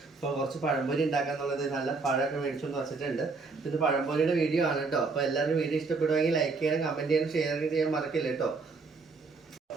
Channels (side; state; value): left; quieter; 4.1 dB